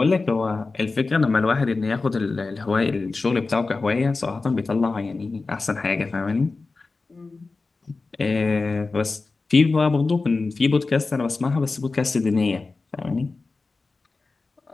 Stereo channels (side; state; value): right; quieter; 3.8 dB